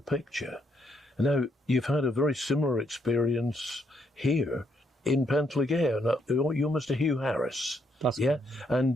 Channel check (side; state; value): both; normal; correlation 0.75